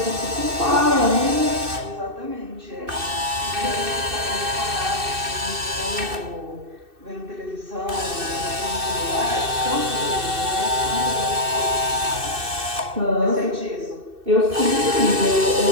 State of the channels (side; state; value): left; late; 2.6 ms